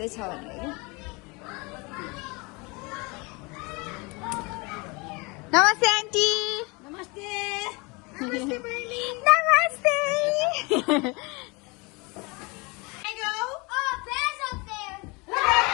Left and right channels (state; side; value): quieter; right; 27.5 dB